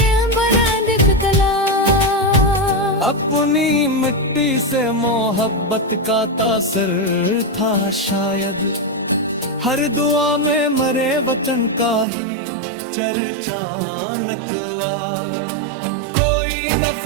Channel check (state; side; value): drops out; left; at 12.1 s